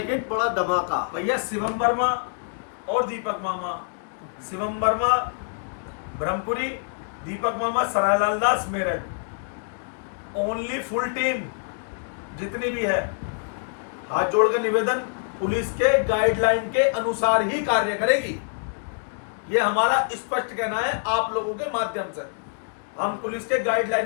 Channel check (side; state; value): right; silent; digital silence